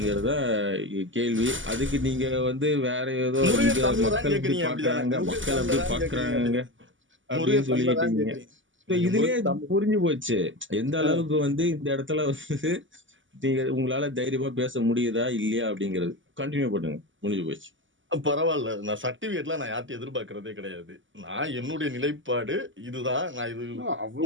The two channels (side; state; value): left; late; 0.56 ms